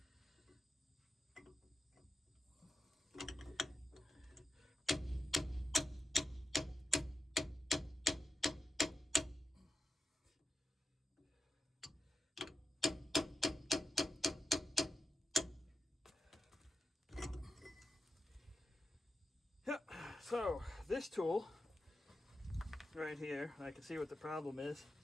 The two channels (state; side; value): normal; both; correlation 0.91